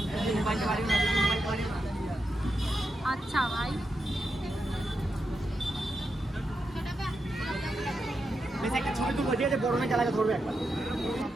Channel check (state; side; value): normal; both; correlation 0.86